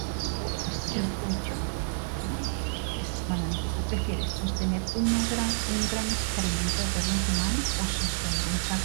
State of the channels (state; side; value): silent; left; digital silence